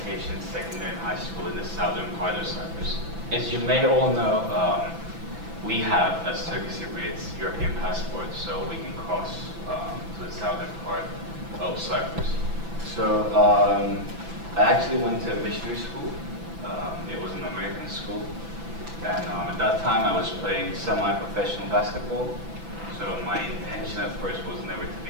secondary and high school in the southern part of Cyprus. As you may all know, we have, as Turkish Cypriots, European passports, so we can cross to the southern part of Cyprus. So I actually went to a missionary school. It was an American school. And at that time, I was playing semi-professional basketball. So my intention at first was never to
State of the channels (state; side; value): late; left; 6.0 ms